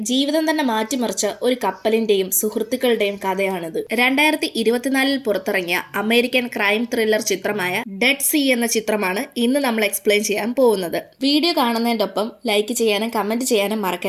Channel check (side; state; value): both; identical; correlation 1.00